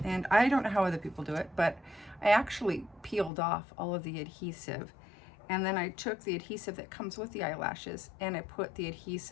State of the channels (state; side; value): drops out; right; at 3.3 s